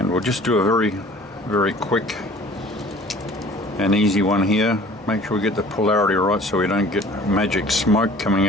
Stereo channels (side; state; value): both; normal; correlation 0.49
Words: we'll just do a very quick and easy one here. Make sure we get the polarity right so we don't get magic smoke coming